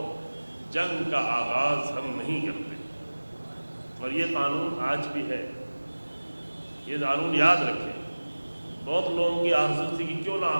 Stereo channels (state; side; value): inverted; both; correlation -1.00